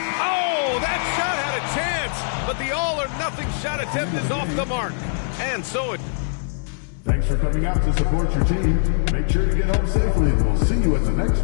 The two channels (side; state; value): right; silent; digital silence